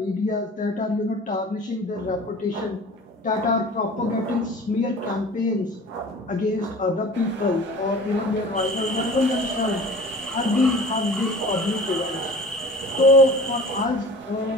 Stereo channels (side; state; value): both; normal; correlation 0.42